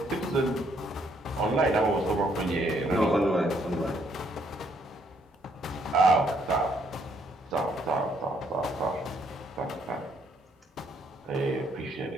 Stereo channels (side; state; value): both; normal; correlation 0.70